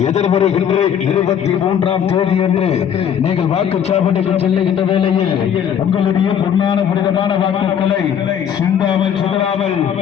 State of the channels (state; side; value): quieter; right; 8.6 dB